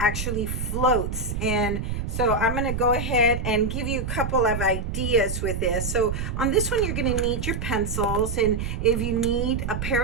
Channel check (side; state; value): right; noise; rumble, 3 dB below the sound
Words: floats? And so I'm going to go ahead and give you a couple of ideas with this. So on this one, you're going to need your pencils, and if you need a